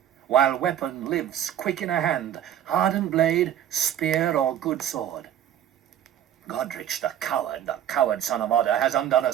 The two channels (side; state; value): left; quieter; 10.5 dB